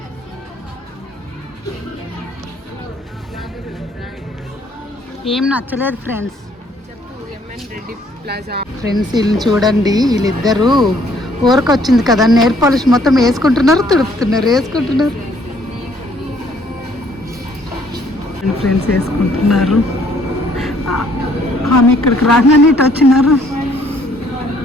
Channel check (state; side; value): normal; both; correlation 0.64